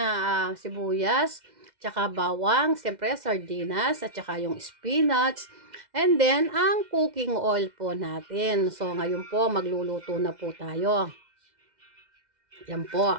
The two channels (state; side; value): late; left; 2.0 ms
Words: sibuyas, tsaka bawang, siyempre sardinas, at tsaka yung spinach, and then ang cooking oil po natin. So ngayon po magluluto na po tayo. Yan